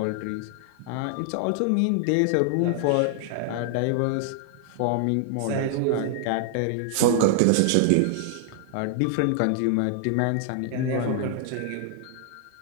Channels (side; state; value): both; different; correlation 0.00